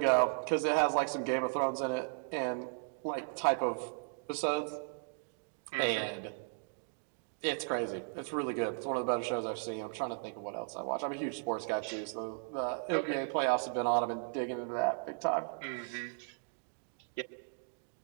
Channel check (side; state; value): left; silent; 54 dB below the other